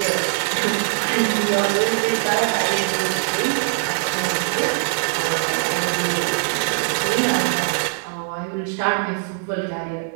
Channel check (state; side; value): silent; left; digital silence